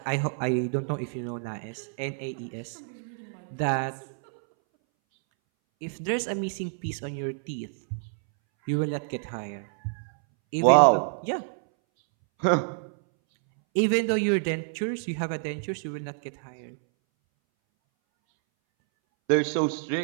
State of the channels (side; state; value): left; silent; 59 dB below the other